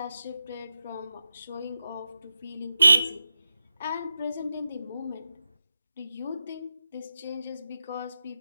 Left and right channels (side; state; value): both; inverted; correlation -0.89